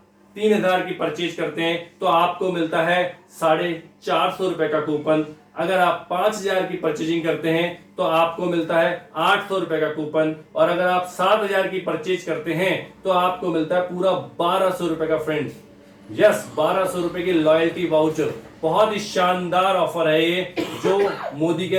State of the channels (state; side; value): identical; both; correlation 1.00